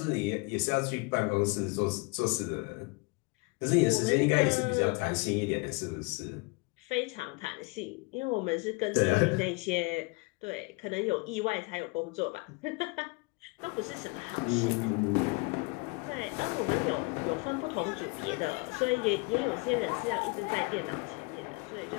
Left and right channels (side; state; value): right; quieter; 28.5 dB